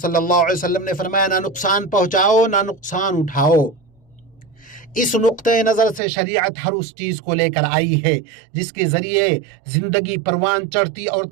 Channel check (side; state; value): left; drops out; at 6.0 s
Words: اللہ علیہ وسلم نے فرمایا نہ نقصان پہنچاؤ نہ نقصان اٹھاؤ۔ اس نقطۂ نظر سے شریعت ہر اس چیز کو لے کر آئی ہے جس کے ذریعے زندگی پروان چڑھتی اور